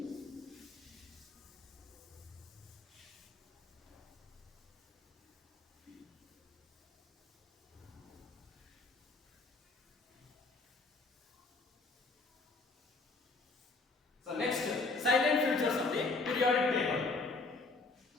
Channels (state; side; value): quieter; right; 3.7 dB